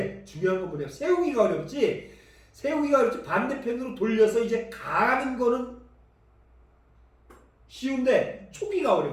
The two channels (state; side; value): identical; both; correlation 1.00